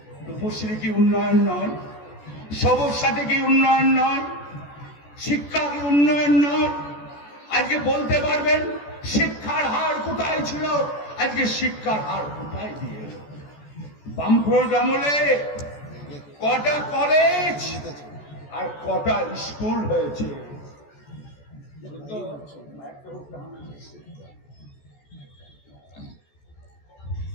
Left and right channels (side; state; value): right; late; 14 ms